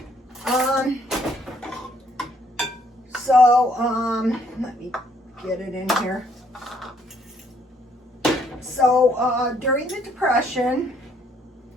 Let me get it in here. So during the Depression,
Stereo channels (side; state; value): both; normal; correlation 0.67